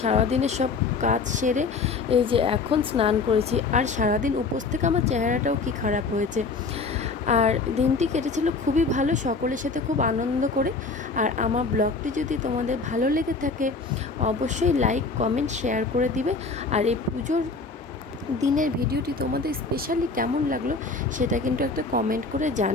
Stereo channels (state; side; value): quieter; right; 4.1 dB